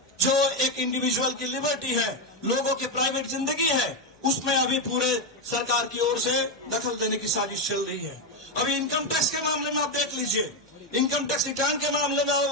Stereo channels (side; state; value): both; normal; correlation 0.08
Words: जो एक इंडिविजुअल की लिबर्टी है, लोगों की प्राइवेट जिंदगी है, उसमें अभी पूरे सरकार की ओर से दखल देने की साजिश चल रही है। अभी इनकम टैक्स के मामले में आप देख लीजिए, इनकम टैक्स रिटर्न के मामले में